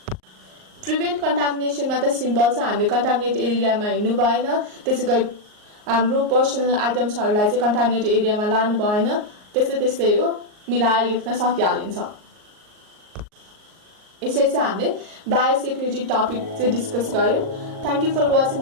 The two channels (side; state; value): left; late; 38 ms